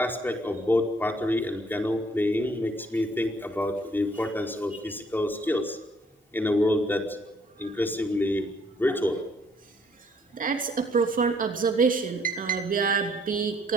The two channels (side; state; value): both; normal; correlation 0.64